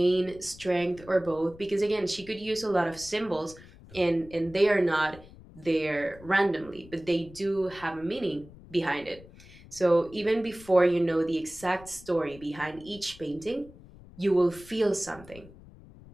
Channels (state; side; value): noise; left; rumble, 20 dB below the sound